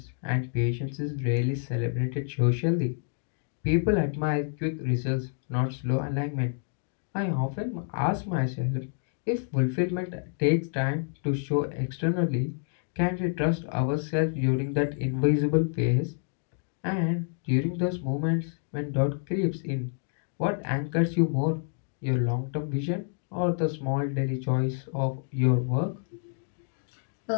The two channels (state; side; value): silent; right; digital silence